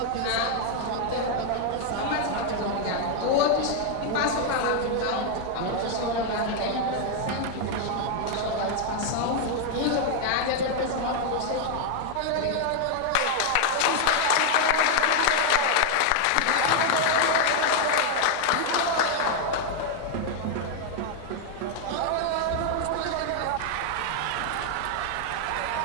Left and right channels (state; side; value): different; both; correlation 0.00